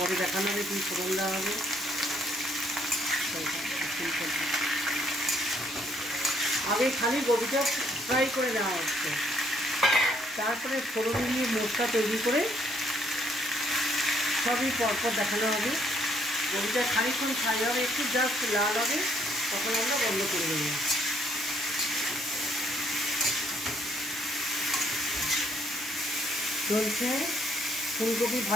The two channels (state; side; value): normal; both; correlation 0.68